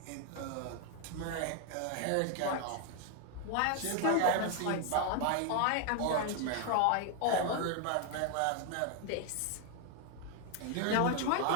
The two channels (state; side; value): different; both; correlation 0.00